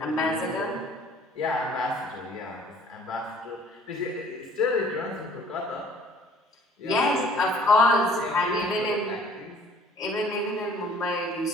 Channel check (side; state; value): both; normal; correlation 0.54